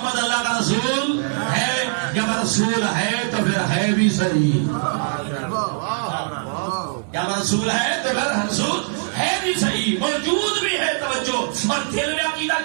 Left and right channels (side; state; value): left; silent; digital silence